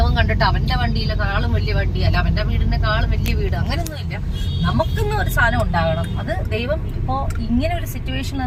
കണ്ടിട്ട് അവന്റെ വണ്ടിയിലെക്കാളും വലിയ വണ്ടി, അല്ല അവന്റെ വീടിനെക്കാളും വലിയ വീട്, അങ്ങനെയൊന്നും ഇല്ല. നമുക്കൊന്നും ഒരു സാധനം ഉണ്ടാകണം. അത് ദൈവം ഇപ്പോ ഇങ്ങനെ ഒരു സിറ്റുവേഷൻ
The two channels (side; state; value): both; identical; correlation 1.00